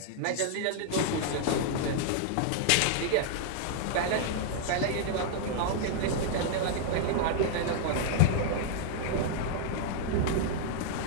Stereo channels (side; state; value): both; different; correlation -0.01